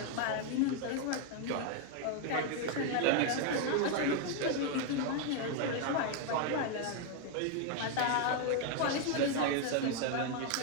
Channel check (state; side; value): different; both; correlation 0.00